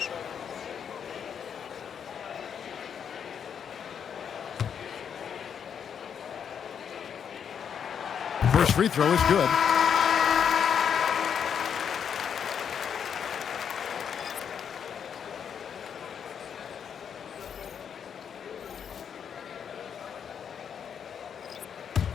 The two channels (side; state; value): right; quieter; 7.7 dB